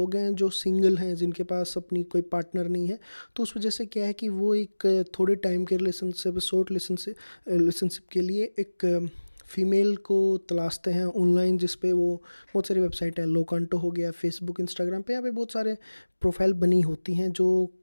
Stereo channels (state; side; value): inverted; both; correlation -1.00